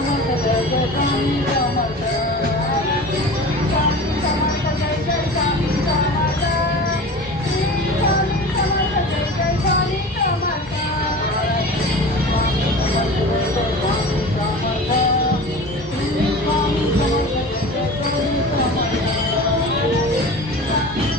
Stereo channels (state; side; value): normal; both; correlation 0.35